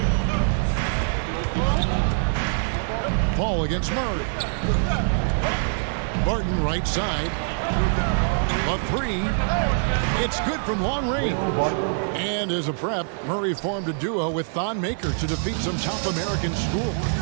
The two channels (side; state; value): left; silent; digital silence